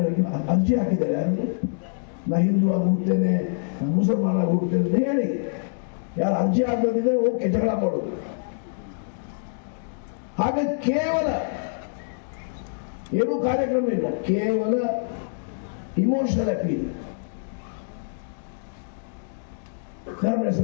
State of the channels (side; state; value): right; silent; digital silence